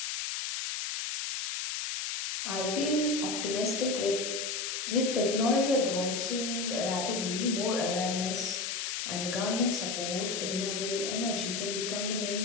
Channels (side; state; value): left; noise; hiss, 2 dB below the sound